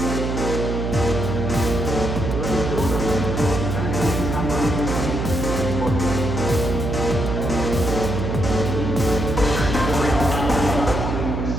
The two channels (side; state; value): right; noise; hum, 2 dB below the sound